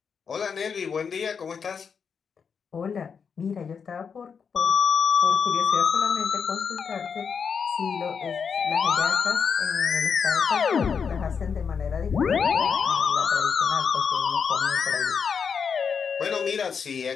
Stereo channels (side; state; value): right; quieter; 6.3 dB